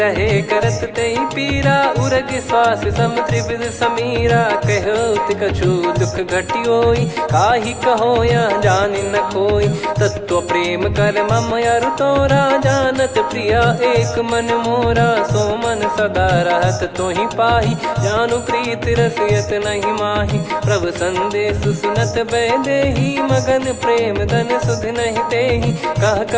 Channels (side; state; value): both; identical; correlation 1.00